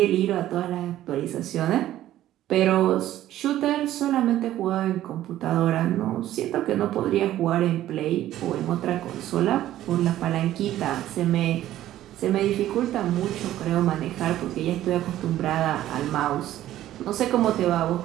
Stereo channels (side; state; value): left; quieter; 13.4 dB